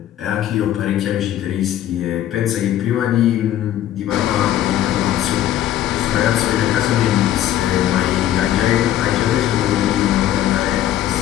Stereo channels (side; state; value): right; quieter; 12.2 dB